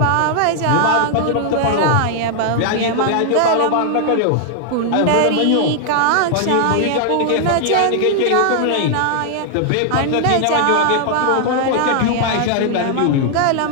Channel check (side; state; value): both; different; correlation 0.00